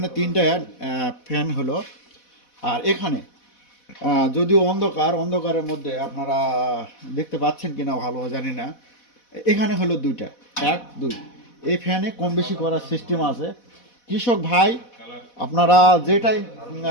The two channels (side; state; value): right; late; 4.1 ms